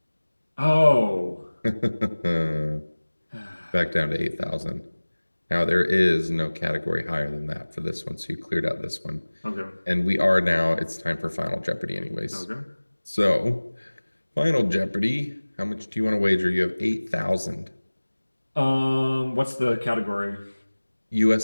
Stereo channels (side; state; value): both; inverted; correlation -1.00